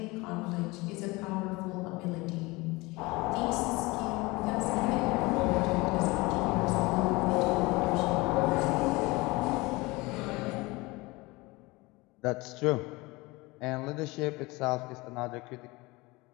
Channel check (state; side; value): quieter; right; 23.1 dB